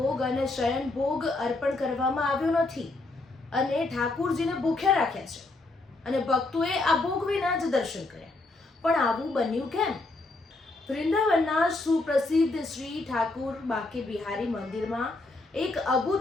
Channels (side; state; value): right; quieter; 3.1 dB